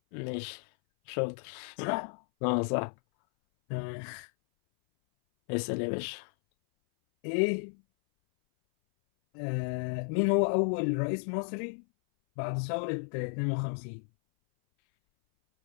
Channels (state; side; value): silent; right; 56 dB below the other